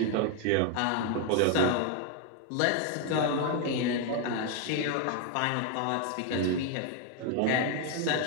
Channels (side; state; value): both; different; correlation 0.01